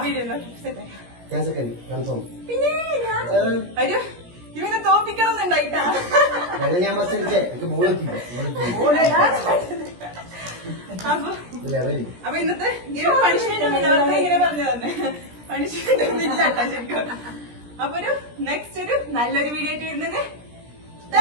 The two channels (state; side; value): late; left; 17 ms